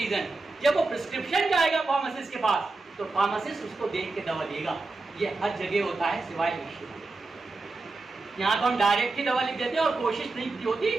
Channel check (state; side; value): quieter; left; 3.5 dB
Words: जब वो प्रिस्क्रिप्शन जाएगा फार्मासिस्ट के पास तो फार्मासिस्ट उसको देख के दवा देगा। ये हर जगह होता है सिवाय विश्व। यहाँ तो हम डायरेक्ट ही दवा लिख देते हैं और कोशिश नहीं होती